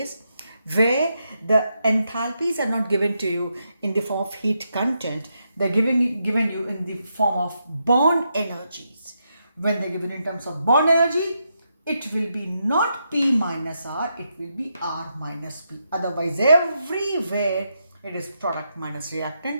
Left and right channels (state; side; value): inverted; both; correlation -0.82